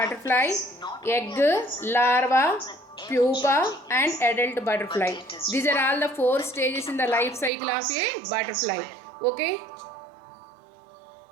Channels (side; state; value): left; drops out; at 7.5 s